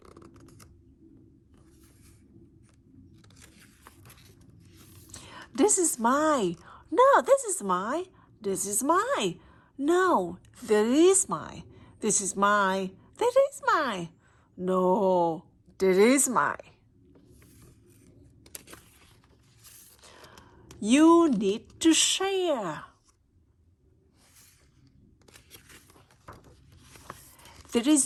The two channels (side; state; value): both; identical; correlation 1.00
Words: This is mine. No, this is mine. This is mine. No, that is mine. This is mine. That is mine. No, that is mine. You need to share. That